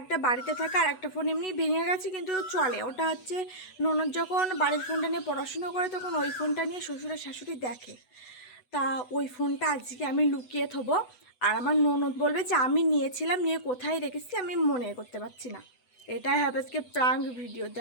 একটা বাড়িতে থাকা আর একটা ফোন এমনি ভেঙে গেছে কিন্তু চলে। ওটা হচ্ছে ননদ যখন বাড়ির ফোনটা নিয়ে পড়াশুনো করে তখন ওই ফোনটা নিয়ে শ্বশুর আর শাশুড়ি দেখে। তা ওই ফোনটা আজকে আমি লুকিয়ে থবো, আর আমার ননদ বলবে যে আমি নিয়েছিলাম, নিয়ে কোথায় রেখেছি আমি মনে করতে পারছি না। এটাই হবে আজকে প্রাঙ্ক ভিডিও,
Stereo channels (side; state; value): right; late; 8.0 ms